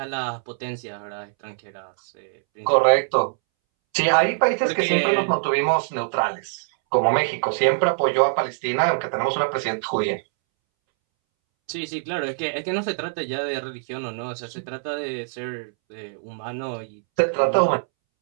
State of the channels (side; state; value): left; silent; 63 dB below the other